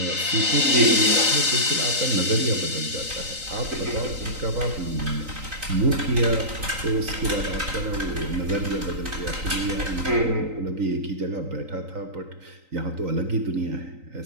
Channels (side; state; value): left; late; 3.9 ms